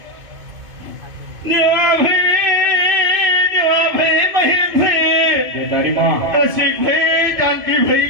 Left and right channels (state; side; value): late; left; 2.5 ms